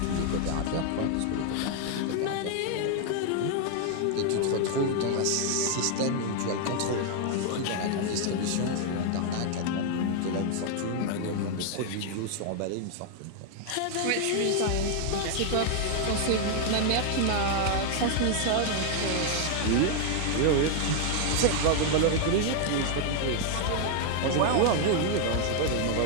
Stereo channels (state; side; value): different; both; correlation 0.00